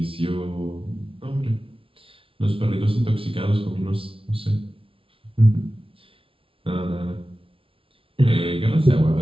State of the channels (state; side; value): late; left; 0.26 ms